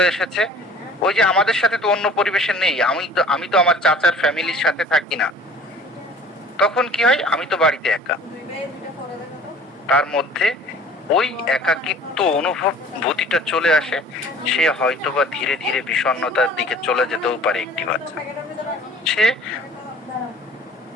এসেছে। ওই যে আমাদের সাথে তো অন্য পরিবেশের নেই, আমি তো আমার চাচার ফ্যামিলির সাথে থাকি না, তখন কি হয়, আমি তো বাড়িতে একা। তার মধ্যে ওই একাকিত্ব অনুভূতিটা চলে আসে, সে হয়তোবা ধীরে ধীরে বিষণ্ণতার দিকে চলে যেতেও পারে একটি বাচ্চা। সে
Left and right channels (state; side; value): normal; both; correlation 0.48